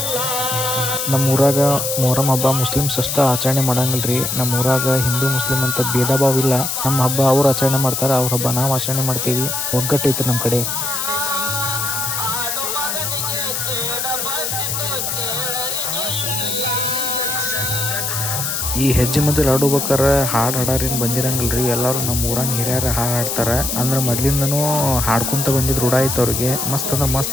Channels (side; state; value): left; noise; hiss, 1 dB below the sound